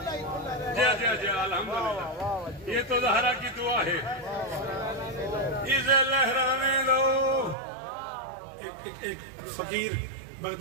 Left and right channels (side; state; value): left; drops out; at 7.6 s